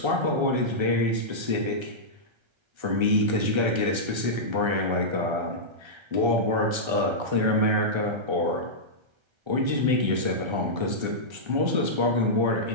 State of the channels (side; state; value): left; late; 1.3 ms